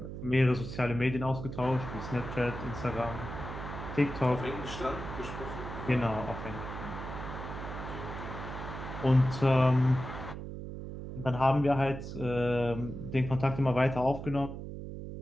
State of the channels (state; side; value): noise; right; hum, 8 dB below the sound